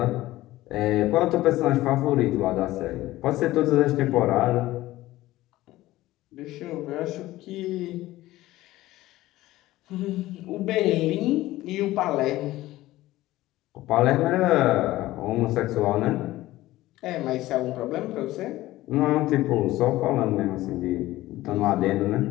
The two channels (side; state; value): right; quieter; 16.6 dB